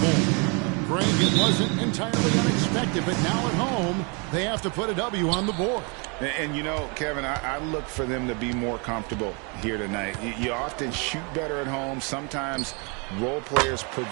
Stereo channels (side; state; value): left; quieter; 33.4 dB